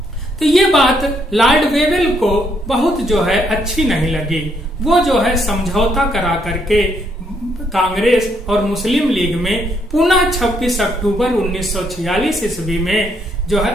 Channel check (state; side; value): normal; both; correlation 0.73